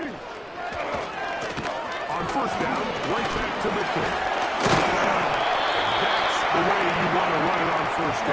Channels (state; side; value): identical; both; correlation 1.00